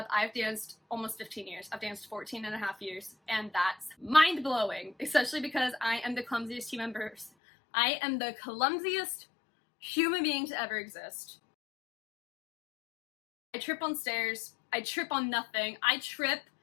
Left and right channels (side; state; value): right; drops out; at 7.3 s